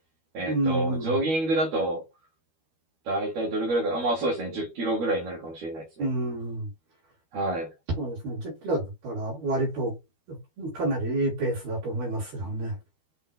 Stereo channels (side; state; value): left; late; 12 ms